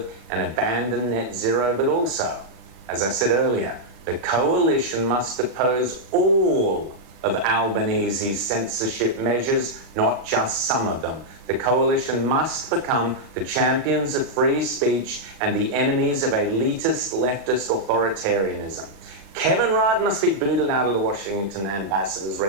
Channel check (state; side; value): late; left; 36 ms